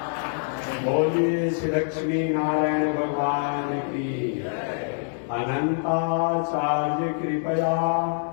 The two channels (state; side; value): silent; right; digital silence